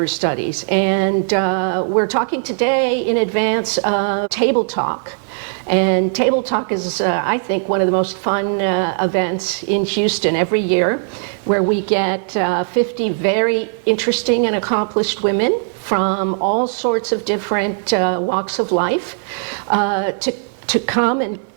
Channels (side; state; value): left; silent; 58 dB below the other